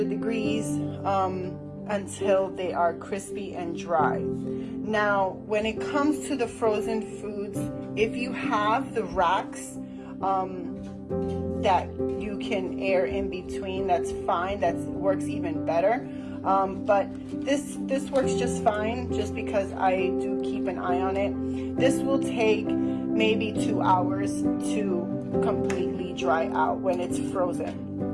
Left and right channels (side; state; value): both; identical; correlation 1.00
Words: degrees until they are crispy and dry. Now, when it comes to the frozen foods, if you have the racks that you can air in between, that's fine. That works even better. But this works just fine, just because I do keep an eye on it. This will take maybe 2 hours to completely dry out when it's frozen.